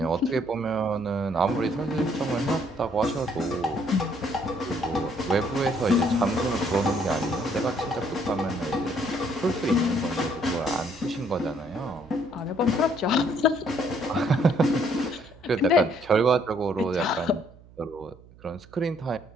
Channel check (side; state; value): right; noise; hum, 23 dB below the sound